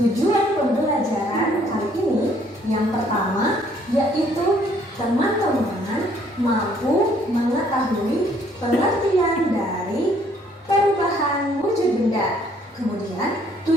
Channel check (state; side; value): normal; both; correlation 0.63